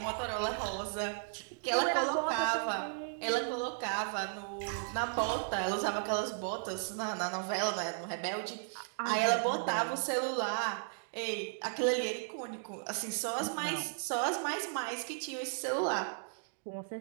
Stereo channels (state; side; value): silent; left; digital silence